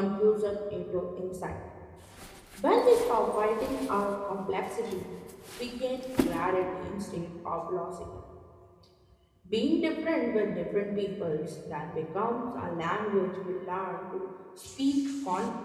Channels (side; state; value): both; identical; correlation 1.00